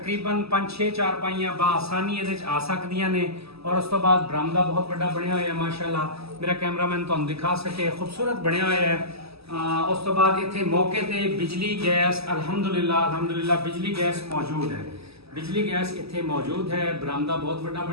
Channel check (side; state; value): left; late; 0.78 ms